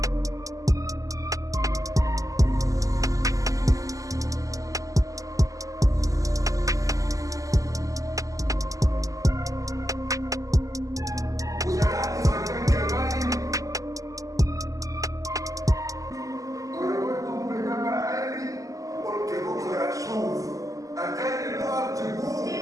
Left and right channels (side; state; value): left; late; 0.16 ms